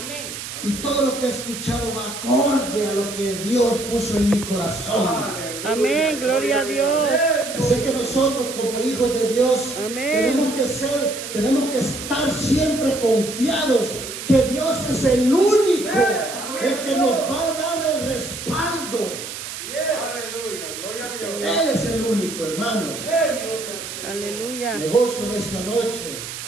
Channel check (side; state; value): right; noise; hiss, 9 dB below the sound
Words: Y todo lo que he escuchado va acorde a lo que Dios puso en mi corazón. Amén. Gloria a Dios. Así que nosotros como hijos de Dios Amén. tenemos que estar siempre confiados que Dios es el único, el que nos va a dar el respaldo. Aleluya. Gloria a Dios. Él es el único, hermanos. Aleluya. Me gozo en esta noche